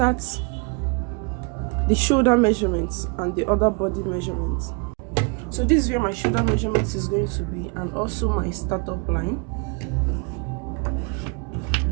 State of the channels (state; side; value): quieter; left; 33.2 dB